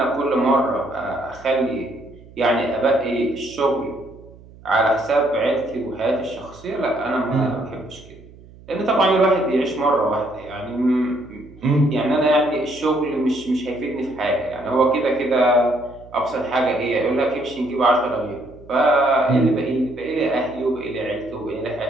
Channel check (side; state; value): right; noise; hum, 22 dB below the sound